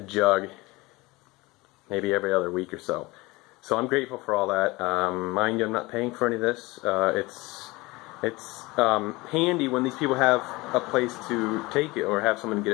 maybe every other week or so. So I'm grateful for all that. Mind you, I'm not paying for any of this. It's handy when these people have a place to take it or have someone get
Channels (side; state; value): right; quieter; 22.3 dB